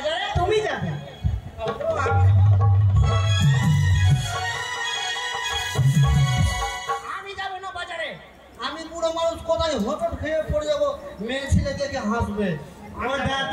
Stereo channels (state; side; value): identical; both; correlation 1.00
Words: তুমি যাবে। আমি যাবো না বাজারে। আমি বুড়ো মানুষ, কোথায় হোঁচট খেয়ে পড়ে যাবো, মেয়ে ছেলে দেখে হাসবে। ও